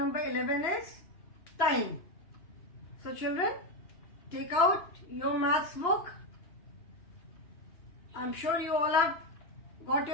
11 is time. So children, take out your maths book. I'm sure you all have got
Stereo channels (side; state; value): right; late; 2.9 ms